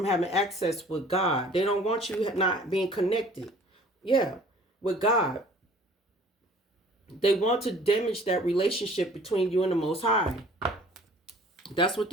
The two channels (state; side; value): normal; both; correlation 0.51